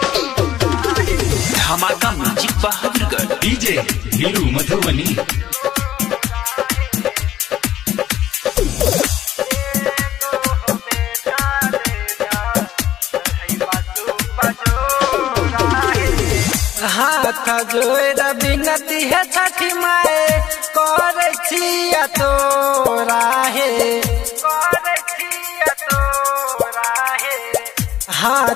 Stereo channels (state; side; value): quieter; right; 12.0 dB